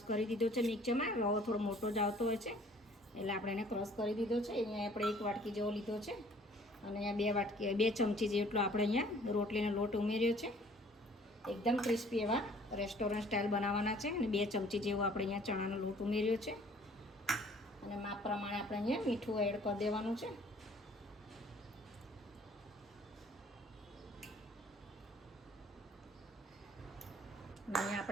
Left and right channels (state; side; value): normal; both; correlation 0.55